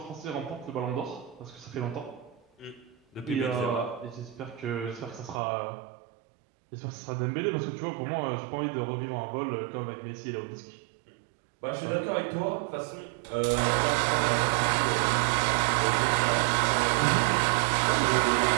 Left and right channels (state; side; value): drops out; left; at 5.4 s